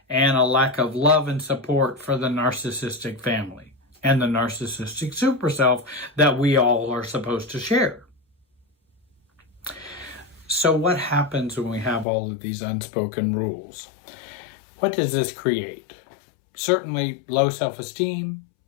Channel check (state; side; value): drops out; right; at 12.1 s